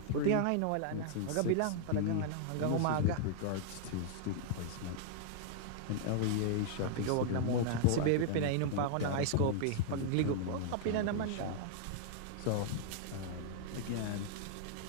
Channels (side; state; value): both; different; correlation -0.01